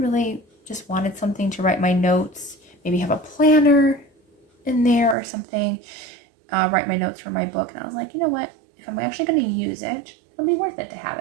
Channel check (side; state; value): left; drops out; at 5.2 s